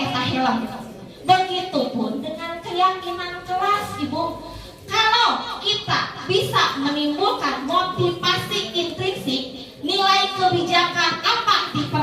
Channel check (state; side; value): identical; both; correlation 1.00